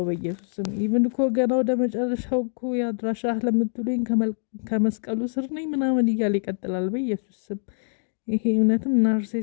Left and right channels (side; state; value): right; silent; digital silence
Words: በኢየሱስ ስም ኢቭን እኮ ገና ወደ መጨረሻው እኮ የአድራሻ ለምትሉኝ ከመስቀሉ ስር ነኝ ምናምን እያለ ይቀጥላል። በኢየሱስ ስም ይሄ እውነትም